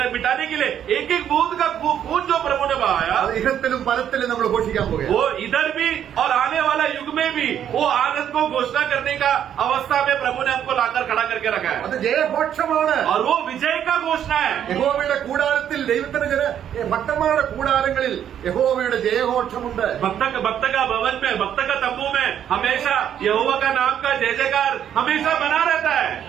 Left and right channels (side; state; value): left; quieter; 9.7 dB